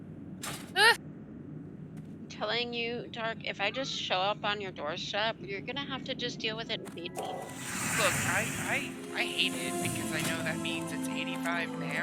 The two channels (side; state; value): both; identical; correlation 1.00